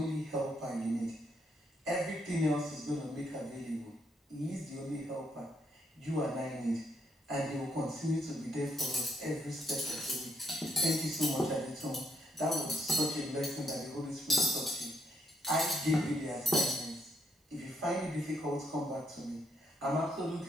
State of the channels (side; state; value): both; normal; correlation 0.74